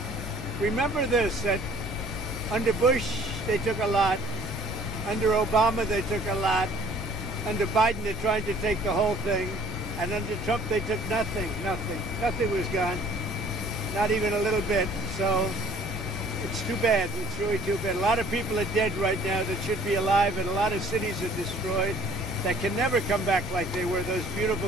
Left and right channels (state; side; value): normal; both; correlation 0.55